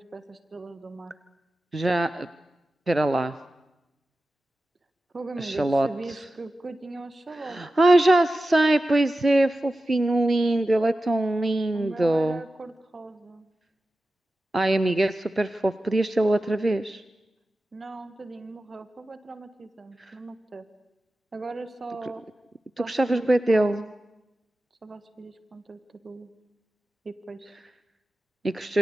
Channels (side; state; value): both; normal; correlation 0.94